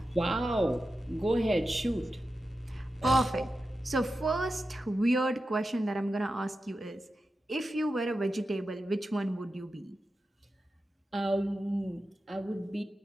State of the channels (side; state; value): both; normal; correlation 0.91